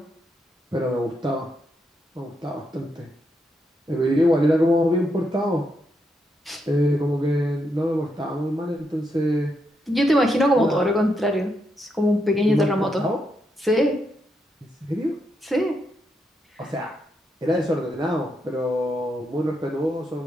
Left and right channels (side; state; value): both; normal; correlation 0.81